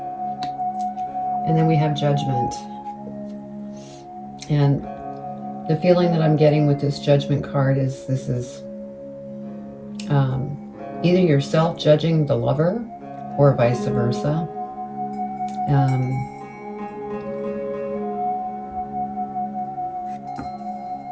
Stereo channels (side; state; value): both; identical; correlation 1.00